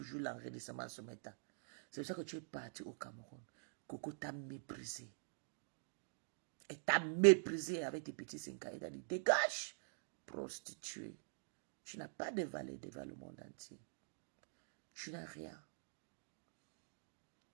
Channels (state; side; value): silent; left; digital silence